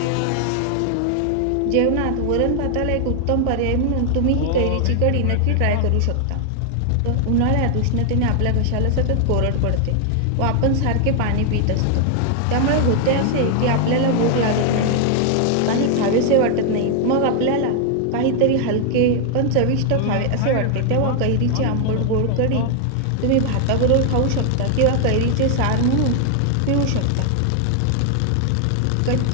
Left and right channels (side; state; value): both; different; correlation 0.00